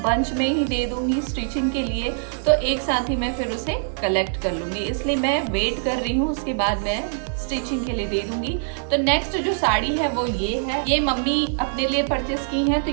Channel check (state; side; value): silent; left; digital silence